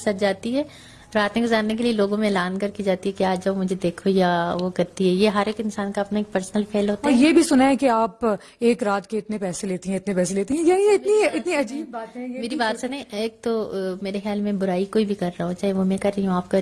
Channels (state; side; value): identical; both; correlation 1.00